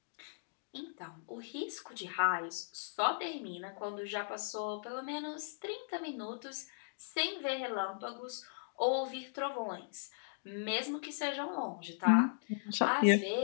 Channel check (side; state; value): right; silent; digital silence